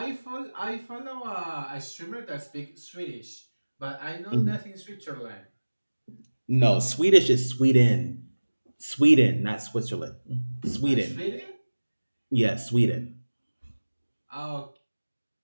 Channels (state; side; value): inverted; both; correlation -1.00